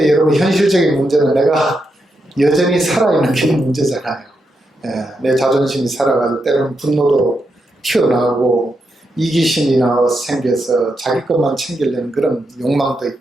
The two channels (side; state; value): both; normal; correlation 0.84